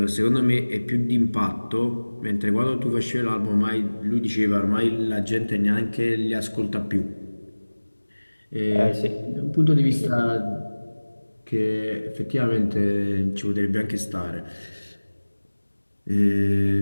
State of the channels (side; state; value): both; inverted; correlation -1.00